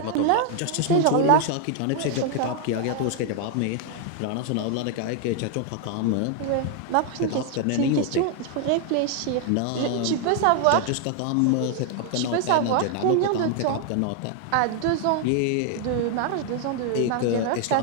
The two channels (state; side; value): different; both; correlation 0.00